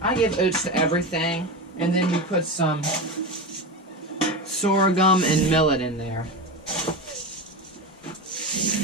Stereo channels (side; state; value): both; normal; correlation 0.21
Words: I give oats to everything, and then we put some sorghum and millet in there.